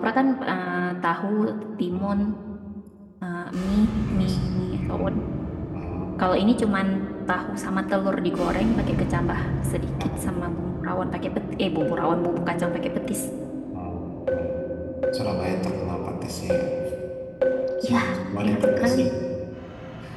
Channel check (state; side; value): identical; both; correlation 1.00